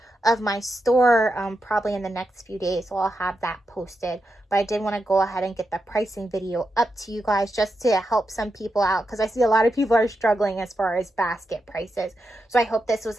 of my store probably in the next few days, so I'll have that posted. But I did want to go ahead and get the pricing video up to you guys just to help some people out, because I see a lot of people are struggling as far as basket prices. So I hope this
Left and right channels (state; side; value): normal; both; correlation 0.87